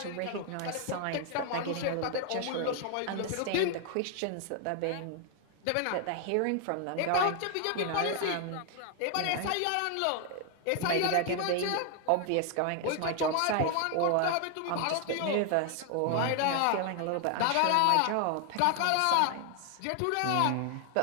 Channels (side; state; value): both; different; correlation 0.00